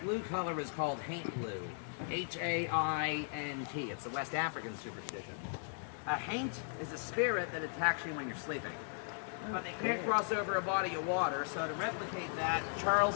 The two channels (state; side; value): silent; right; digital silence